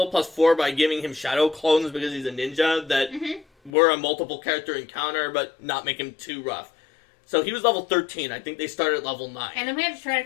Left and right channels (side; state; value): right; drops out; at 3.7 s